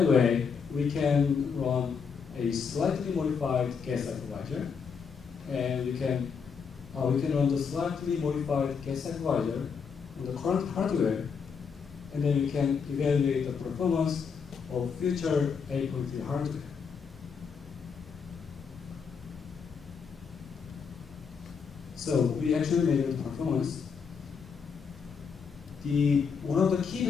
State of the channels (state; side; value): quieter; right; 6.0 dB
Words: way, we can run a slightly modified gas hypervisor, and we can run the slightly modified gas hypervisor on the current hardware, and then we can evaluate the performance of future 8.3 hardware. So we actually measure the performance. One of the key